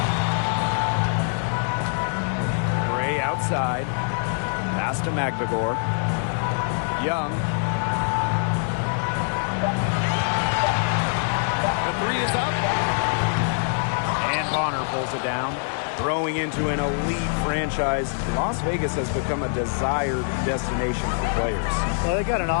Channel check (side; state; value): right; silent; 62 dB below the other